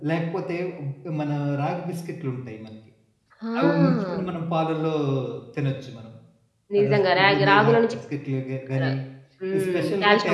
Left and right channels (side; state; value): both; identical; correlation 1.00